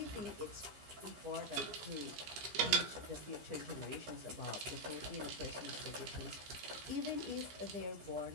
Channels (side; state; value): left; late; 15 ms